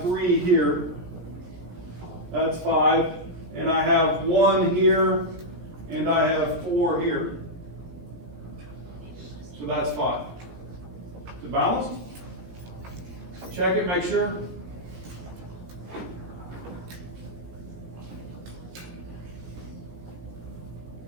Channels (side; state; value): left; late; 17 ms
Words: 3 here. That's 5. And I have 1 here, and I have 4 here. So that's 5. Is it balanced? Check it, make sure.